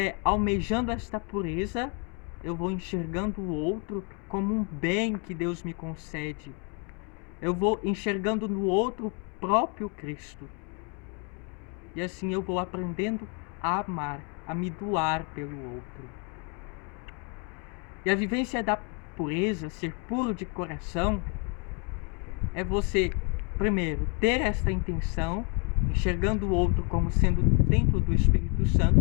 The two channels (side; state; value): right; quieter; 35.2 dB